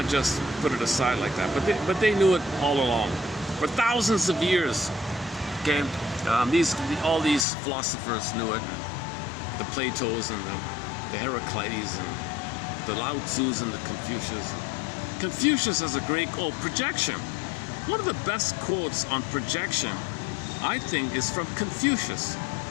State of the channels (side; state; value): right; drops out; at 7.5 s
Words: just put it aside like that. But they knew it all along. For thousands of years, okay, all these philosophers knew it. The Platos and the Heraclides and the Lao Tzus and the Confucius. Confucius has a great quote, projection. One of the best quotes on projection, I think, is from Confucius.